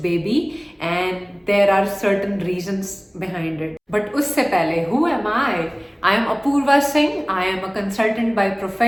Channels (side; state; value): both; identical; correlation 1.00